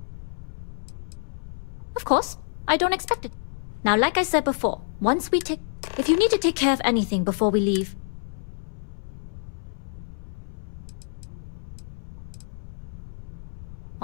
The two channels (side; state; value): right; silent; 60 dB below the other